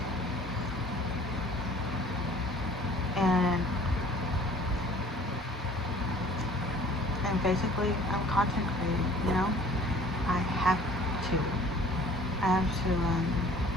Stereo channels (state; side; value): normal; both; correlation 0.51